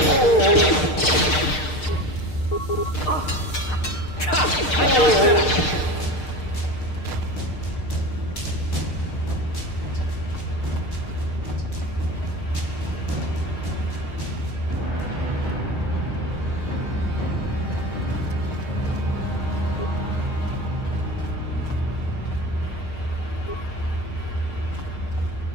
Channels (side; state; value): right; late; 6.6 ms